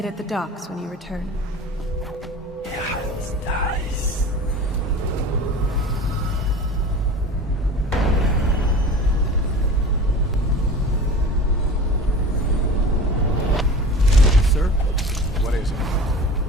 at the docks when you return. It's nice. Sir? What is it?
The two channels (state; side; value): normal; both; correlation 0.37